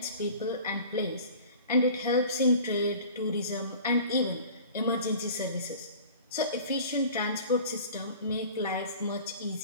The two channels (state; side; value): inverted; both; correlation -0.43